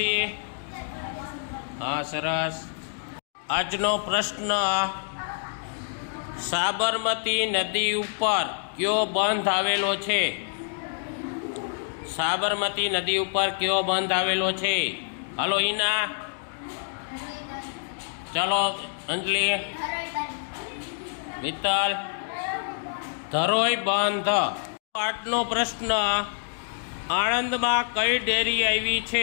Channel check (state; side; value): silent; right; digital silence